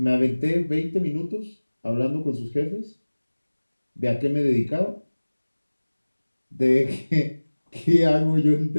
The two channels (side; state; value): both; inverted; correlation -1.00